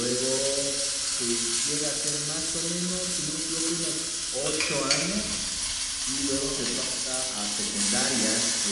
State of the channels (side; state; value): both; identical; correlation 1.00